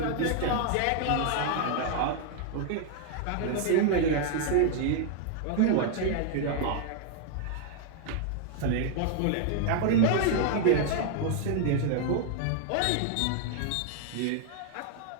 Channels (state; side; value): different; both; correlation 0.00